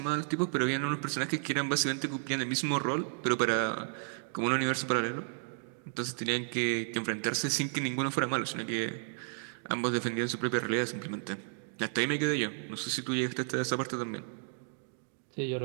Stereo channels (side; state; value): left; silent; digital silence